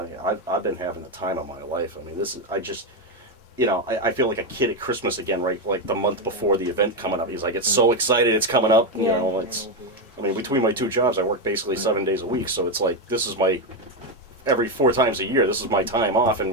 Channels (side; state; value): both; normal; correlation 0.08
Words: been having the time of my life. I mean, this is, I feel like a kid at Christmas again, right? Like the month before the event coming up. He's like, it's so excited, it's coming up. Between my two jobs, I work basically 7 days a week. So it's like, this is every 4 times a year, this is my time off,